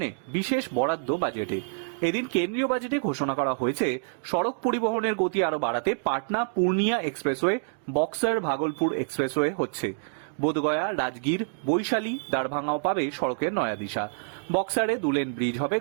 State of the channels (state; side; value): silent; left; digital silence